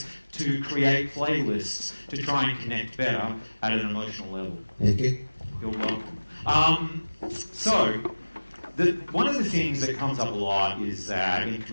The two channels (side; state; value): both; inverted; correlation -1.00